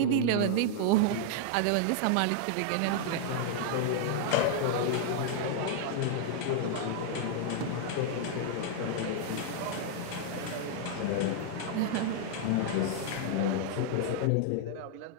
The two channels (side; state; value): both; different; correlation -0.01